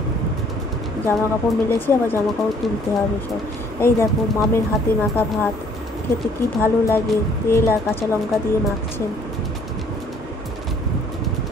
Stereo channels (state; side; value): normal; both; correlation 0.60